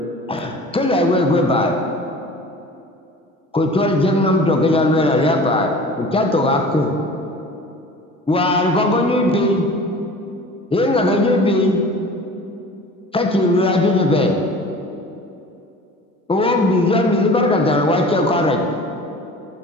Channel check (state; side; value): normal; both; correlation 0.41